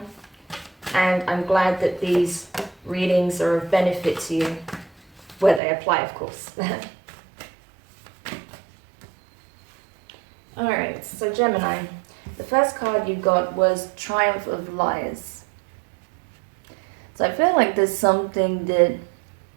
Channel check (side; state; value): left; drops out; at 5.6 s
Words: And I'm glad that these readings are of benefit to you, where they apply, of course. Alright, so Gemini, the first card you got was Triumph of Liars. So I feel like there's something